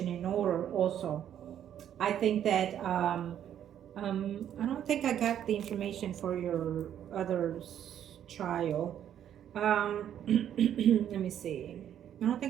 in order also, I think that I don't think I got the information for your other child. Let me see. I don't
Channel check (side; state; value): left; quieter; 10.1 dB